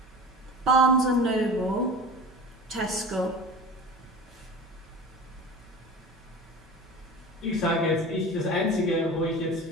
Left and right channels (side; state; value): both; normal; correlation 0.35